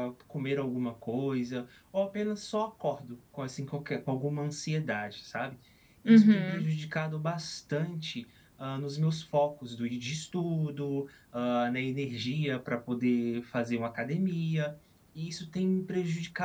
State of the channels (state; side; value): identical; both; correlation 1.00